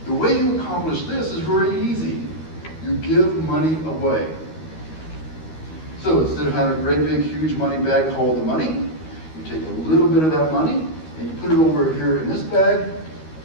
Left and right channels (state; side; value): late; right; 13 ms